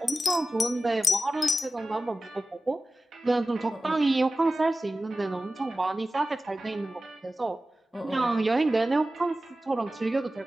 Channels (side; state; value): both; normal; correlation 0.95